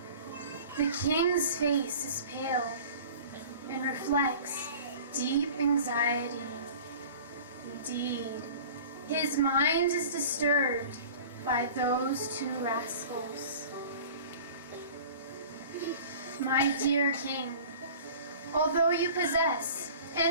The king's face is pale and reflects deep anxiety. Indeed, his mind is disturbed by those two rascals. My dear king, although you possess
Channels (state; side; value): inverted; both; correlation -0.42